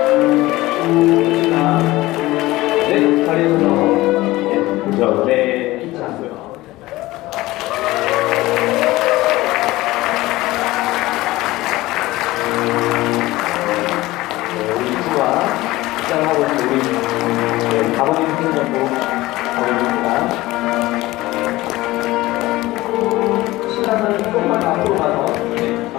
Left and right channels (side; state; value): right; quieter; 18.4 dB